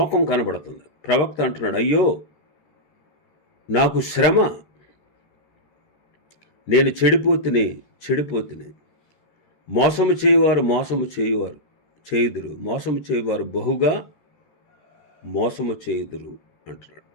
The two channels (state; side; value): late; right; 13 ms